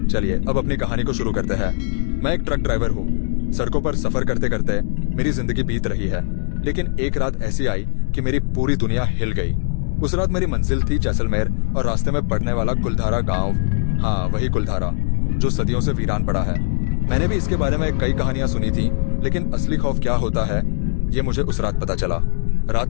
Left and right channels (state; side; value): silent; right; digital silence